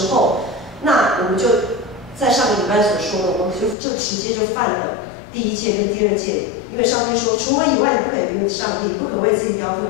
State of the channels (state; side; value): drops out; right; at 3.8 s